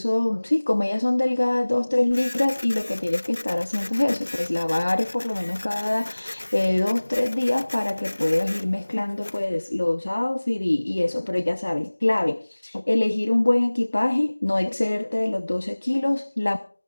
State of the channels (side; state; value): both; inverted; correlation -1.00